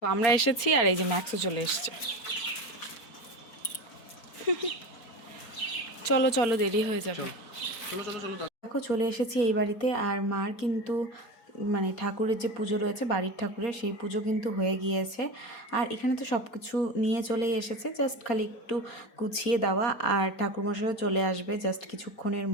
তো আমরা এসেছি, আর এই যে ম্যাক্সও চলে এসছে। চলো চলো, দেরি হয়ে যাবে। দেখো চলে এসেছি এই বাড়িতে, আর মার কিন্তু মানে ঠাকুরের যে পুজো রয়েছে, বাড়ির ঠাকুরের, সেই পুজো কিন্তু হয়ে গিয়েছে। আর এখানে তো সব কিছু নিয়ে চলেই এসেছে, জাস্ট খালি একটু গুছিয়ে দেওয়া। আর ঠাকুরমশাইও চলে আসবে জাস্ট কিছুক্ষণের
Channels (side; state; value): right; late; 4.4 ms